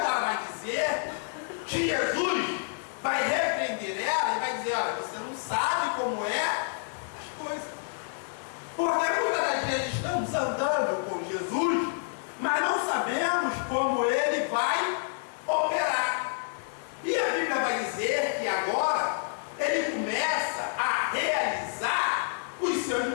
vai dizer que Jesus vai repreender ela e vai dizer: olha, você não sabe como é as coisas. Porque muitas das vezes estamos andando com Jesus, mas não sabemos como ele vai operar. E a Bíblia vai dizer que agora ele começa a realizar os seus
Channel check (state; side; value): silent; right; 57 dB below the other